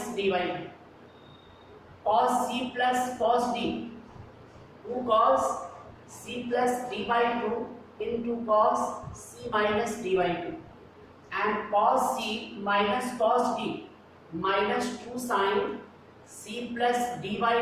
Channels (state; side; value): identical; both; correlation 1.00